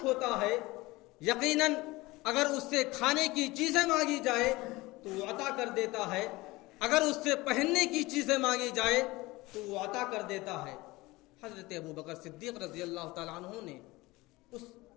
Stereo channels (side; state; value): right; quieter; 21.0 dB